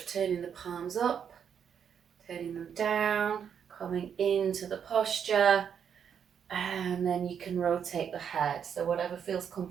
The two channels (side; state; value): left; quieter; 7.8 dB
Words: turning the palms up, turning them down, coming into the posture, and then you can rotate the head. So whatever feels